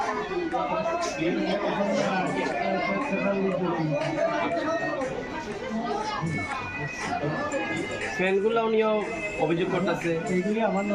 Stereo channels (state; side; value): identical; both; correlation 1.00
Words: ফ্যানগুলো নিয়েও অভিযোগ করতেছে, এইগুলি আমার